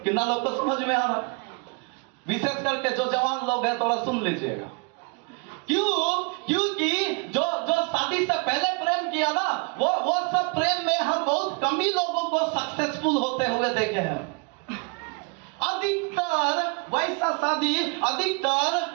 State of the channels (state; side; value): quieter; left; 33.0 dB